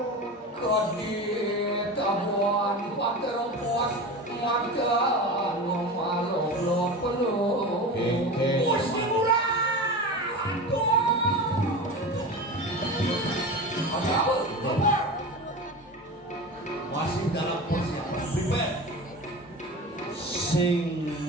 kadit abuan paterpuas makan ngomalok peluh mesti murah aduh ada apa? Masih dalam persiapan prepare sing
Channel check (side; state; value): both; normal; correlation 0.28